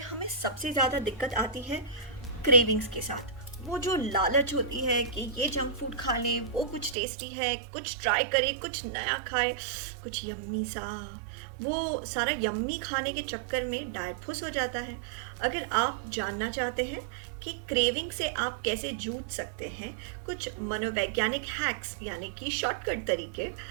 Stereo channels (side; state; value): left; drops out; at 7.0 s